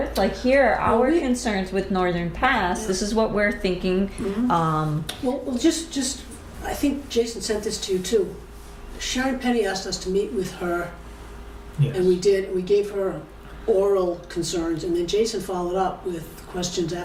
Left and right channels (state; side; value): identical; both; correlation 1.00